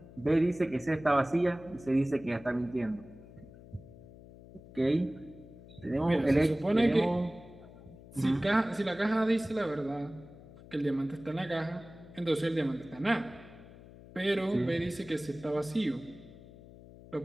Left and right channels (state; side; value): noise; left; hum, 19 dB below the sound